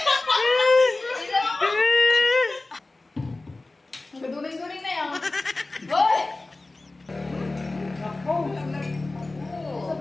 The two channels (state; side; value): quieter; right; 3.1 dB